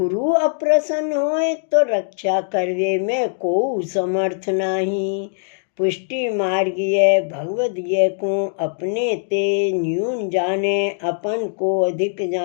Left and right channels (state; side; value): silent; right; digital silence